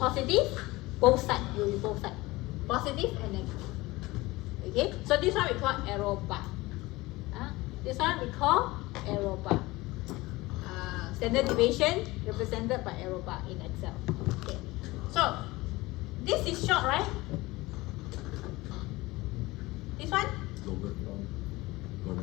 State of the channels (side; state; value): right; quieter; 20.6 dB